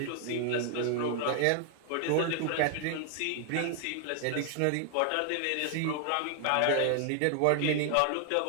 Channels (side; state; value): both; different; correlation 0.00